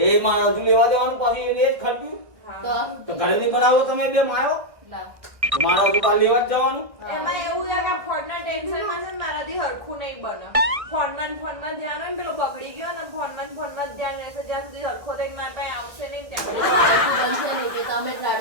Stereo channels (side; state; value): left; late; 1.6 ms